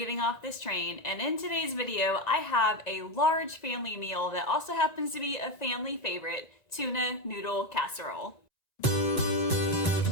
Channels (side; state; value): right; late; 1.9 ms